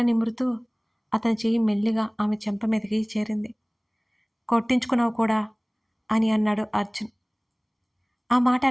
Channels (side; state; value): both; identical; correlation 1.00